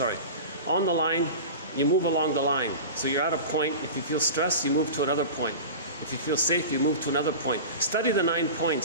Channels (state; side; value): inverted; both; correlation -0.31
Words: On the line, you move along the line. So you're at a point. If you feel stressed, you move to another point. If you feel safe, you move to another point. Study the 9